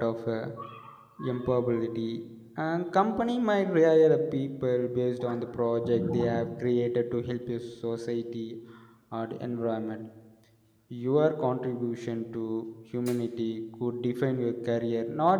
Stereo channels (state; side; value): identical; both; correlation 1.00